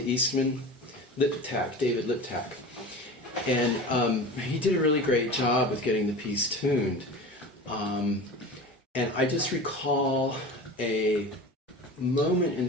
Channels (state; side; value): normal; both; correlation 0.33